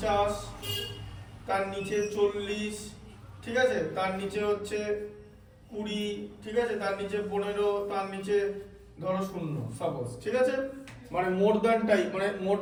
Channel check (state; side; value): identical; both; correlation 1.00